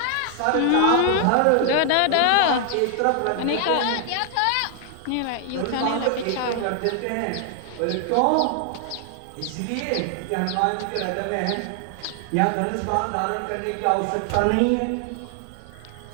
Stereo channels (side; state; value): both; different; correlation 0.00